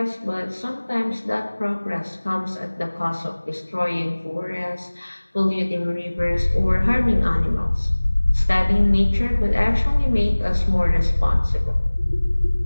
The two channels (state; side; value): inverted; both; correlation -1.00